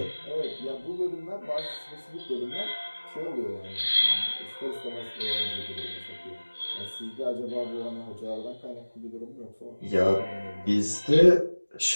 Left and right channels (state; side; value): inverted; both; correlation -1.00